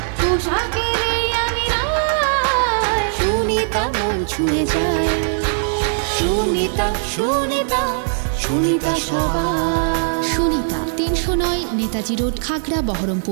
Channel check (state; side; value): silent; left; digital silence